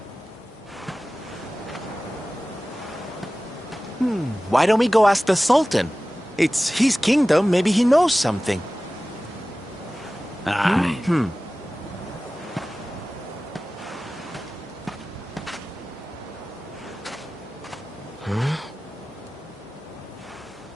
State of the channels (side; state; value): both; normal; correlation 0.96